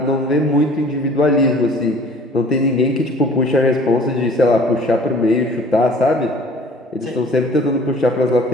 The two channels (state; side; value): normal; both; correlation 0.50